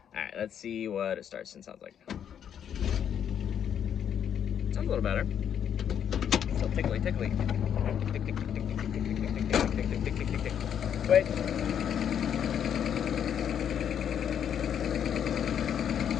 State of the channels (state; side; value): quieter; right; 8.8 dB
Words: All right, let's see what it starts and sounds like. Sounds a little better. Still tickly. Tick, tick, tick, tick, tick, tick, tick, tick, tick, tick, tick, tick, tick, tick, tick. Wait.